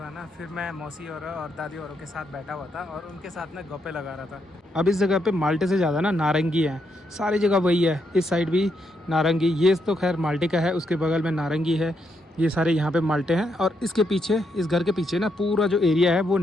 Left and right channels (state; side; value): normal; both; correlation 0.79